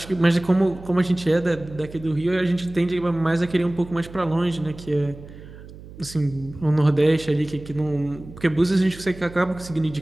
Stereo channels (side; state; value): right; noise; hum, 17 dB below the sound